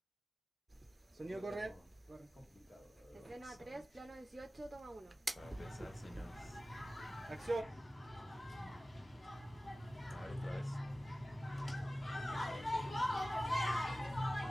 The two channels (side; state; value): both; normal; correlation 0.97